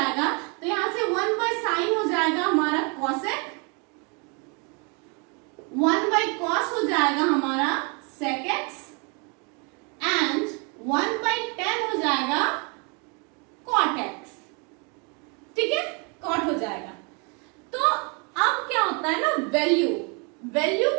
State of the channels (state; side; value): quieter; left; 33.7 dB